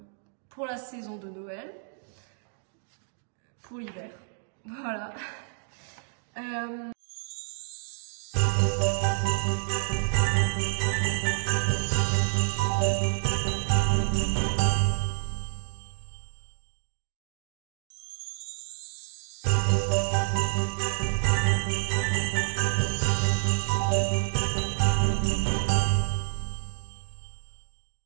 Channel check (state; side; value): silent; left; digital silence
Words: pour la saison de Noël, pour l'hiver, voilà.